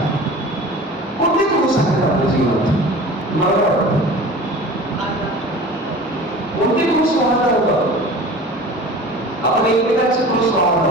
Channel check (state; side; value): normal; both; correlation 0.39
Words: आपण एकमेकांचे क्रूस